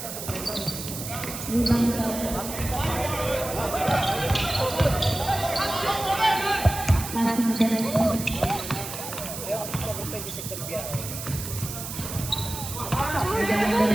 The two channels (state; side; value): noise; right; hiss, 8 dB below the sound